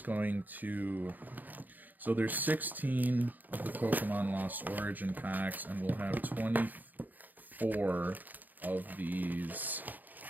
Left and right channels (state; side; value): late; left; 0.084 ms